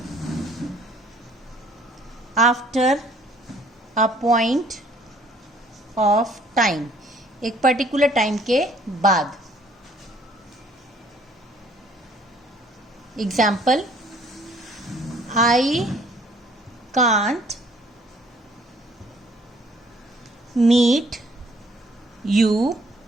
after a point of time, एक पर्टिकुलर टाइम के बाद। Example, I can't meet you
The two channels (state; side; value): normal; both; correlation 0.60